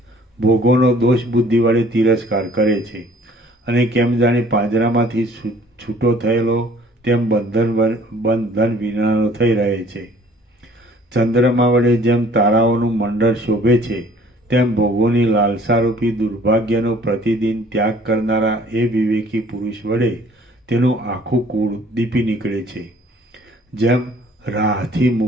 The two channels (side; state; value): both; normal; correlation 0.54